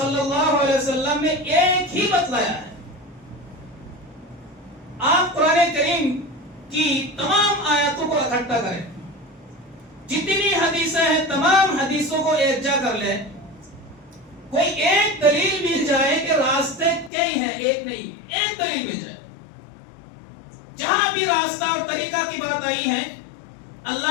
اللہ علیہ وسلم نے ایک ہی بتلایا ہے. آپ قرآن کریم کی تمام آیاتوں کو اکٹھا کریں، جتنی حدیثیں ہیں تمام حدیثوں کو ایک جا کر لیں، کوئی ایک دلیل مل جائے کہ راستے کئی ہیں، ایک نہیں، ایک دلیل مل جائے. جہاں بھی راستہ اور طریقہ کی بات آئی ہے،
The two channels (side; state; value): right; drops out; at 17.1 s